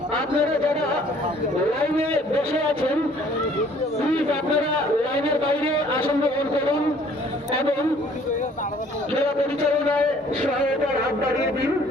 আপনারা যারা লাইনে বসে আছেন প্লিজ আপনারা লাইনের বাইরে আসন গ্রহণ করুন এবং খেলা পরিচালনায় সহায়তার হাত বাড়িয়ে দিন।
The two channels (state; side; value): normal; both; correlation 0.57